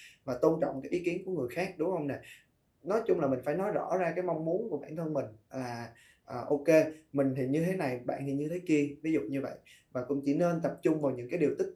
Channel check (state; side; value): identical; both; correlation 1.00